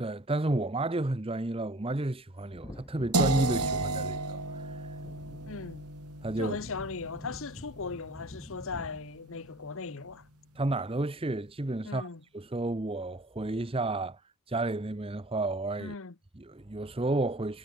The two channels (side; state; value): both; normal; correlation 0.44